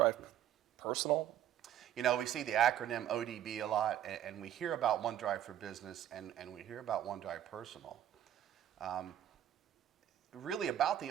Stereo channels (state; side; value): quieter; left; 11.3 dB